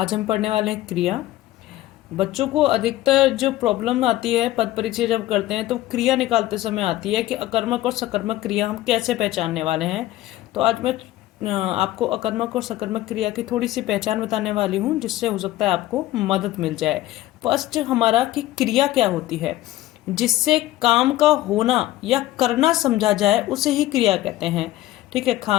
हम पढ़ने वाले हैं क्रिया। बच्चों को अधिकतर जो प्रॉब्लम आती है पद परिचय जब करते हैं तो क्रिया निकालते समय आती है कि अकर्मक और सकर्मक क्रिया हम कैसे पहचानने वाले हैं। तो आज मैं आपको अकर्मक और सकर्मक क्रिया की थोड़ी सी पहचान बताने वाली हूँ, जिससे हो सकता है आपको मदद मिल जाए। फर्स्ट हमारा कि क्रिया क्या होती है, जिससे काम का होना या करना समझा जाए उसे ही क्रिया कहते हैं। ठीक है,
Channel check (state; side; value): quieter; right; 15.5 dB